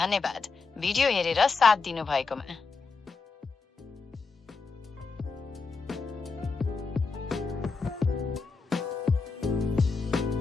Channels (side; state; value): right; quieter; 4.5 dB